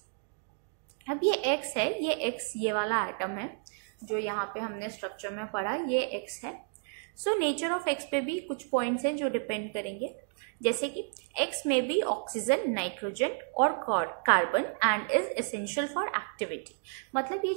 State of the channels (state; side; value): silent; left; 57 dB below the other